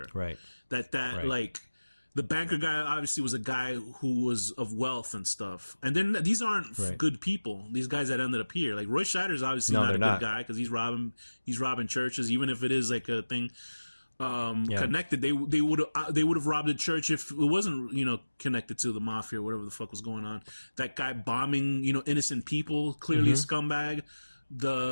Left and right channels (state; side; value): inverted; both; correlation -1.00